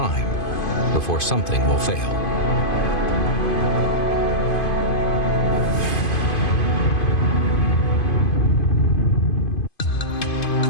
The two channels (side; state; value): right; late; 2.5 ms